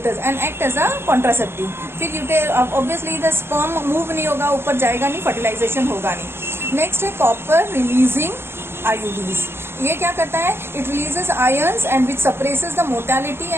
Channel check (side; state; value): left; late; 0.12 ms